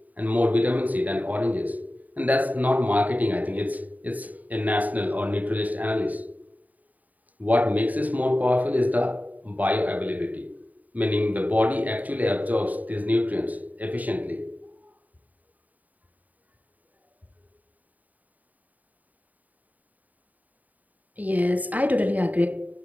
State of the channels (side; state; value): left; late; 0.076 ms